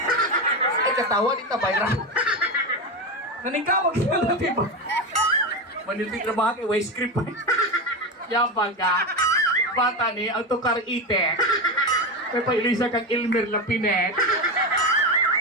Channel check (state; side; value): normal; both; correlation 0.16